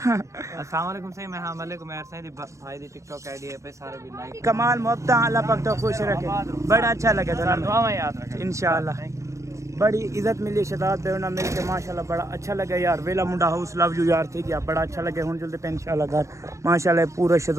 अस्सलाम वालेकुम सही मैं हां वालेकुम यार सही भाई दी टिकटॉक आईडी है पे सारे भी लाइक कमाल मोहब्बत अल्लाह पाक तो खुश रखे बड़ा अच्छा लगे तो दुआ में याद रखें इंशाल्लाह बड़ी इज्जत मिली शहजाद बेवना मिल के माशाल्लाह बड़ा अच्छा लगे यार वेला मुंडा हाउस लव यू यार ठीक है बड़ा अच्छा लगे हुन जल्दी पे इंशाल्लाह घर माशाल्लाह पूरा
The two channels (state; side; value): late; left; 0.15 ms